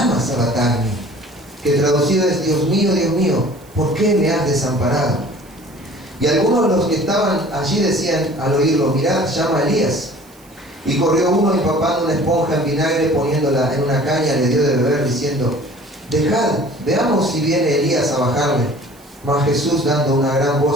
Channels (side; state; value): right; noise; hiss, 27 dB below the sound